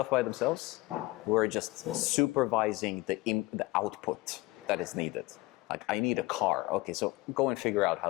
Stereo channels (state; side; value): quieter; right; 20.8 dB